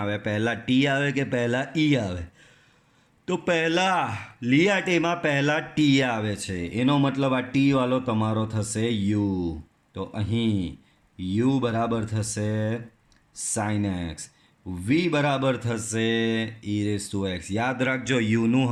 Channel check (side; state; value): both; identical; correlation 1.00